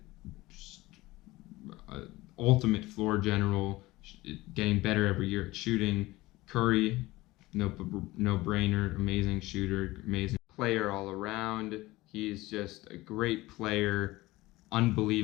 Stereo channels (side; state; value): right; quieter; 19.4 dB